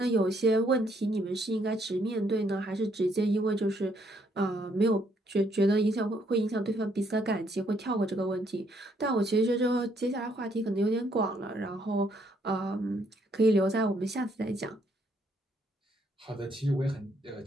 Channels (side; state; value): both; normal; correlation 0.70